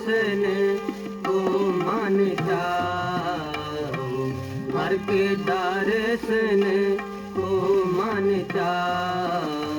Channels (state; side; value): identical; both; correlation 1.00